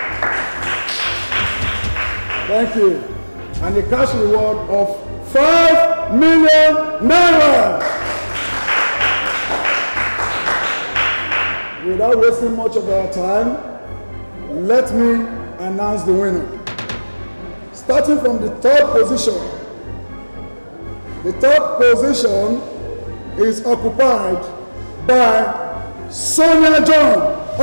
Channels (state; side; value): inverted; both; correlation -1.00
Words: Thank you. And a cash reward of 5 million naira. Without wasting much of our time, let me announce the winner. Starting from the third position. The third position is occupied by Sonia John